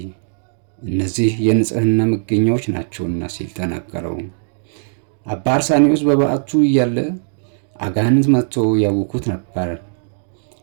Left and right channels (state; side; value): silent; left; digital silence